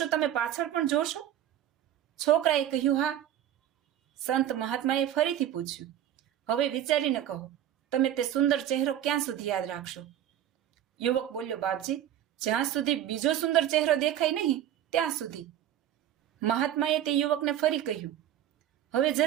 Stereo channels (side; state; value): left; quieter; 11.4 dB